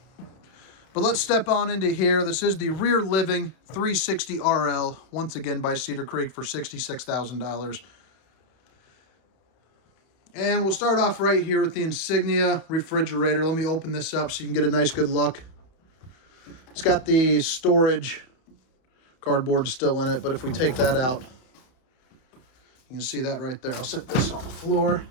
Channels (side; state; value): right; late; 31 ms